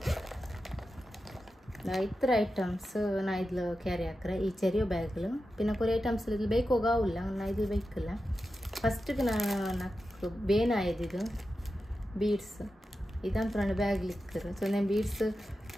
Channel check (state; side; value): normal; both; correlation 0.91